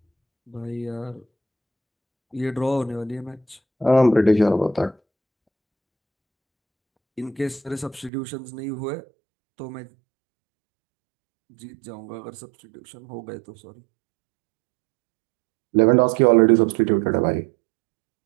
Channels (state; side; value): drops out; left; at 8.1 s